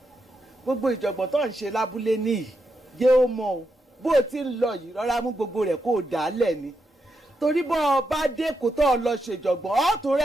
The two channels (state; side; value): normal; both; correlation 0.84